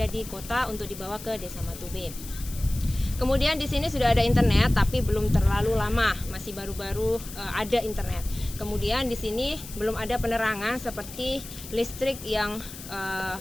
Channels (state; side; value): noise; left; hiss, 14 dB below the sound